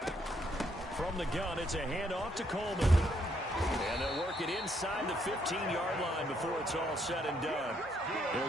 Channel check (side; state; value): both; normal; correlation 0.72